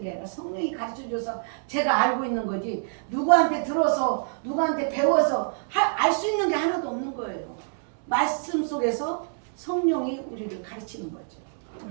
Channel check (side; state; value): left; silent; digital silence